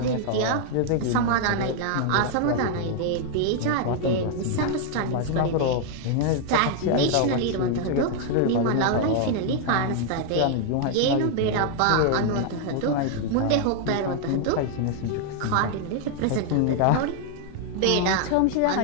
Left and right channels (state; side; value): different; both; correlation 0.00